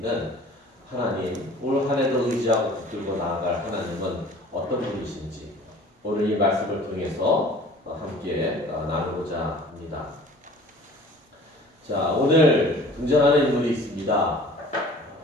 하나님, 올 한 해도 의지하고 붙들고 나아갈 하나님은 어떤 분이신지 오늘 이 말씀을 통해서 함께 나누고자 합니다. 자, 오늘 등장하는 인물이 있습니다.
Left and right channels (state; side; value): normal; both; correlation 0.47